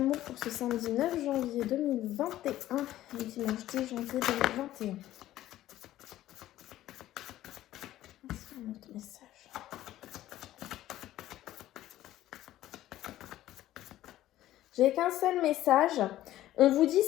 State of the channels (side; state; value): right; quieter; 14.1 dB